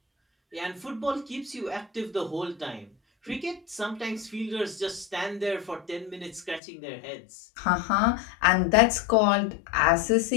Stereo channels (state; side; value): drops out; right; at 6.6 s